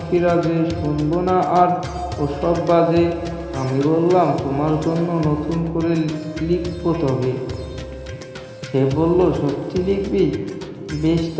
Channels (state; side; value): identical; both; correlation 1.00